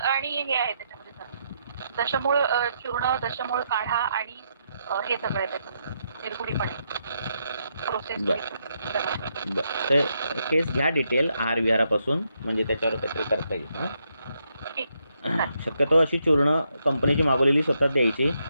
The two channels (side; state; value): both; inverted; correlation -0.79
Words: हे आहे त्याच्यामध्ये सर, दशमूळ चूर्ण, दशमूळ काढा आणि हे सगळं त्याचं निर्गुडीपणे प्रोसेस. ते केस घ्या डिटेल आहार विहारापासून, म्हणजे त्याच्यावर काहीतरी करता येईल. शक्यतो अशी चूर्ण कंपनीची मागवलेली स्वतः द्यायची.